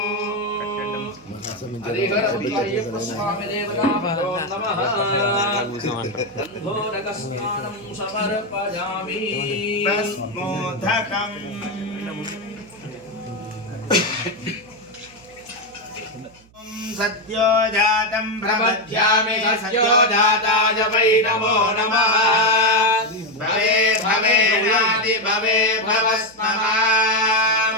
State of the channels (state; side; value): noise; right; hum, 28 dB below the sound